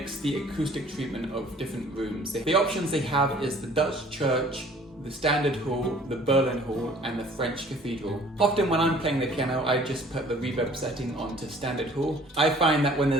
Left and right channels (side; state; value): both; normal; correlation 0.53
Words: the acoustic treatment of different rooms. The options they have is the Dutch church, the standard hall, the Berlin hall, and the French cathedral. Often when I'm playing the piano, I just put the reverb setting onto standard hall. I find that when